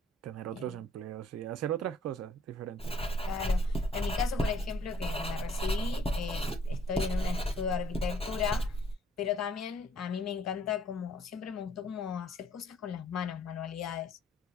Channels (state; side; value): normal; both; correlation 0.61